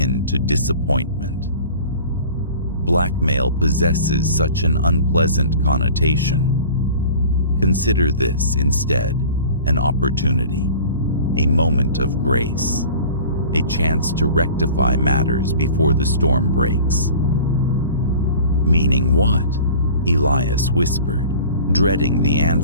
to disappointment. Blackmail possesses such an unpleasant connotation. Consider this instead an opportunity, a moment of grace, a chance to rectify matters before the storm breaks. Meaning what? Elias whispered, dreading the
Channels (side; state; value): both; inverted; correlation -0.43